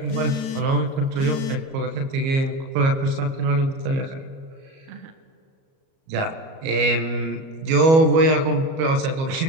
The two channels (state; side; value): late; left; 37 ms